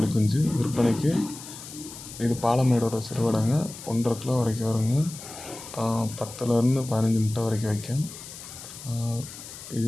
குஞ்சு விற்பனைக்கு. இது பாலமேடோட சிறுவிடைங்க. 1.5 கிலோ வரைக்கும் வருங்க. 10லேருந்து 15 முட்டை வரைக்கும் வைக்கும்.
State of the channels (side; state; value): left; noise; hiss, 13 dB below the sound